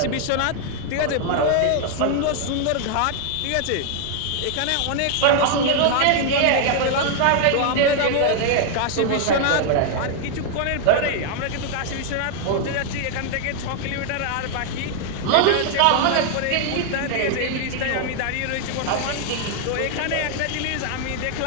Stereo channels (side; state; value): both; different; correlation 0.00